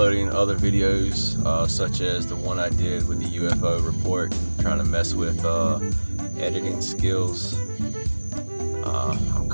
other videos, such as the one I did with the UFO report, trying to mess with editing skills. I'm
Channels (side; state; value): both; inverted; correlation -1.00